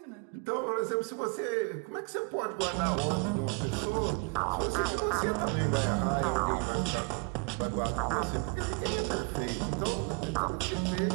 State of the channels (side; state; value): left; quieter; 34.6 dB